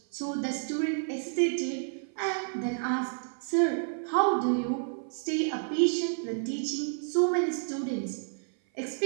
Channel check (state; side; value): silent; left; 56 dB below the other